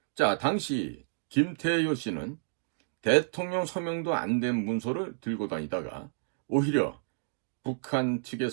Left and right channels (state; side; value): silent; left; digital silence